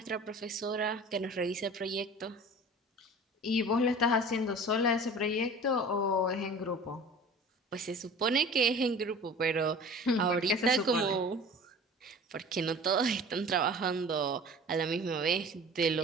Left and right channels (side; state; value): both; normal; correlation 0.41